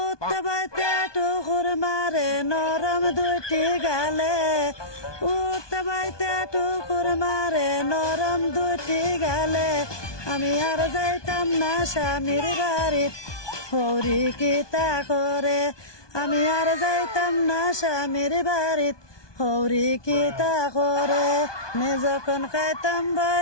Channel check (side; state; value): right; late; 1.2 ms